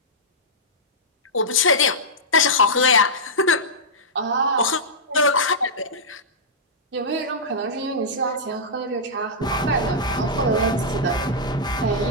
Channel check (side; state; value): both; normal; correlation -0.11